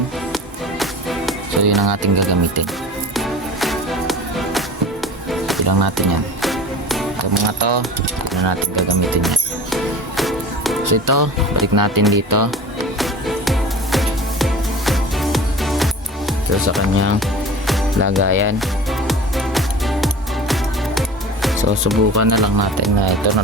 So yun ang ating gagamitin. Ilang natin yan. Ito mga to, yun ang natin gagamitin yan. So ito, balik natin dito. So sa kanyang lagayan. So subukan na lang natin na ito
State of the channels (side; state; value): both; normal; correlation 0.37